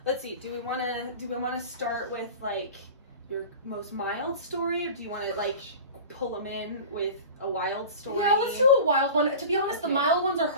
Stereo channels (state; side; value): inverted; both; correlation -0.35